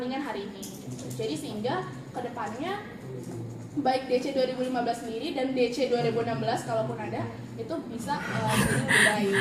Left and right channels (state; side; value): identical; both; correlation 1.00